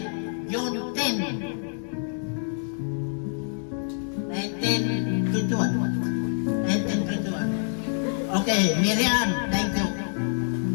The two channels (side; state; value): right; silent; 60 dB below the other